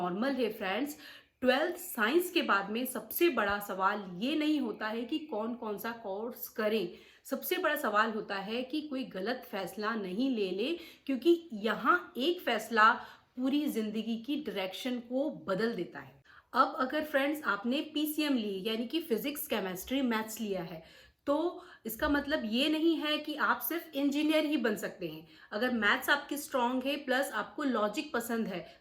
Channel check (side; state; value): both; identical; correlation 1.00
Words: है फ्रेंड्स। 12th साइंस के बाद में सबसे बड़ा सवाल ये नहीं होता है कि कौन कौन सा कोर्स करें, सबसे बड़ा सवाल होता है कि कोई गलत फैसला नहीं ले ले, क्योंकि यहाँ एक फैसला पूरी जिंदगी की डायरेक्शन को बदल देता है। अब अगर फ्रेंड्स आपने पीसीएम ली यानी कि फिजिक्स केमिस्ट्री मैथ्स लिया है, तो इसका मतलब ये नहीं है कि आप सिर्फ इंजीनियर ही बन सकते हैं। अगर मैथ्स आपकी स्ट्रांग है प्लस आपको लॉजिक पसंद है,